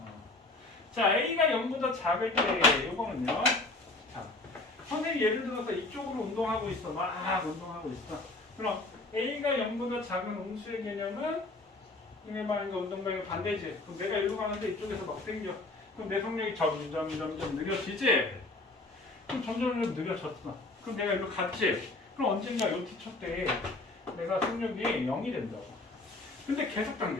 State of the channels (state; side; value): quieter; right; 3.0 dB